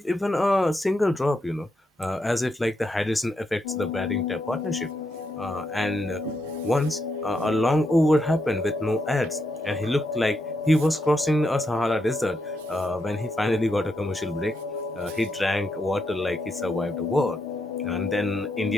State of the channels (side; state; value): both; normal; correlation 0.81